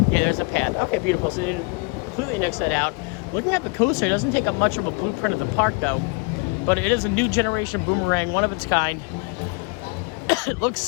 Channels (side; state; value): right; quieter; 32.0 dB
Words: Yeah, there's a path. Okay, beautiful. So they didn't completely nix that out. Looking at the coaster, it doesn't take up much of a blueprint of the park though. But it is a new generation boomerang, one of its kind. It looks